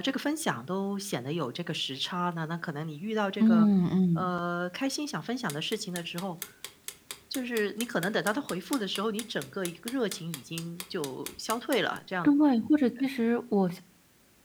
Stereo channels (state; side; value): identical; both; correlation 1.00